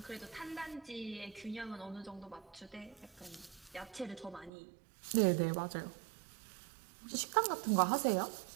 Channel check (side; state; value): left; drops out; at 4.5 s